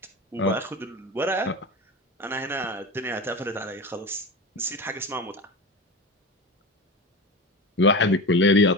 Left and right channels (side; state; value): both; normal; correlation 0.26